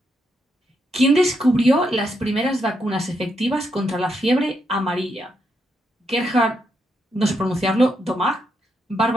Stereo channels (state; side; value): normal; both; correlation 0.80